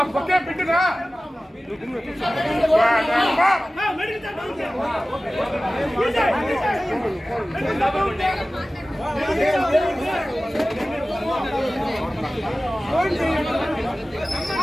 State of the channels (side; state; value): both; normal; correlation 0.97